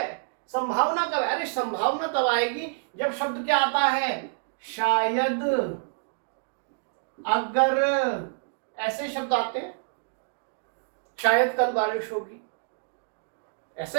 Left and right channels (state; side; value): silent; left; digital silence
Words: संभावना कब? अरे संभावना तब आएगी जब शब्द क्या आता है, शायद, अगर, ऐसे शब्द आते हैं। शायद कल बारिश होगी,